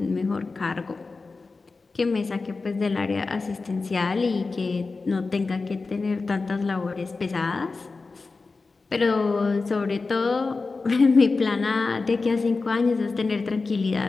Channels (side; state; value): right; quieter; 4.0 dB